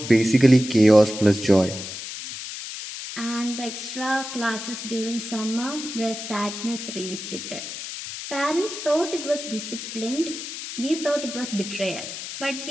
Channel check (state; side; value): noise; left; hiss, 8 dB below the sound